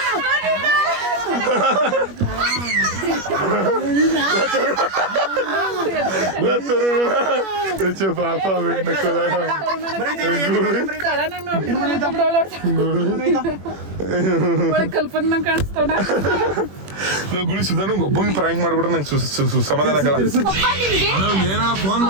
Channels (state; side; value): late; left; 21 ms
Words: ಪಾಪ ಕಲ್ಪನೆ ಕಾಣಿಸ್ತವನ ಗುಳಿ ಸುಧಾನ ಒಬ್ಬಂಗೆ ಪ್ರಾಂಕ್ ಮಾಡ್ಬಿಟ್ರೆ ನಂಗೆ ಸಮಾಧಾನ ಆಗಲ್ಲ. ಏನಾರ ಫೋನ್